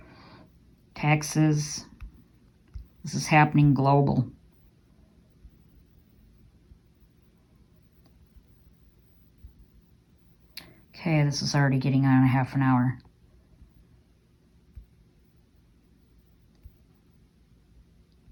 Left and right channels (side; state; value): both; identical; correlation 1.00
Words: Texas. This is happening global. Okay, this is already getting on a half an hour.